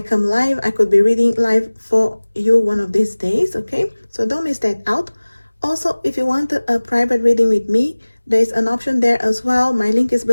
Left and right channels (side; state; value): both; inverted; correlation -1.00